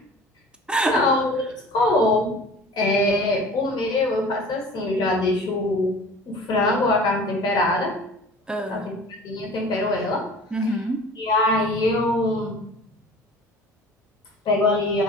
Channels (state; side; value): normal; both; correlation 0.43